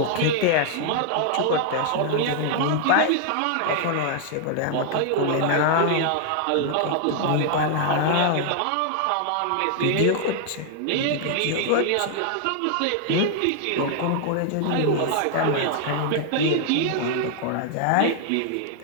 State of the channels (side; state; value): both; different; correlation 0.00